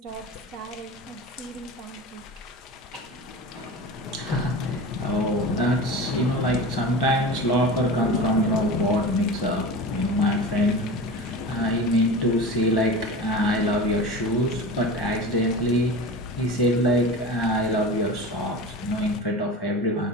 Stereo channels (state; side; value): normal; both; correlation 0.31